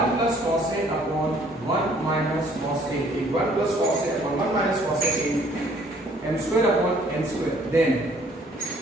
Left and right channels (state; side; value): normal; both; correlation 0.60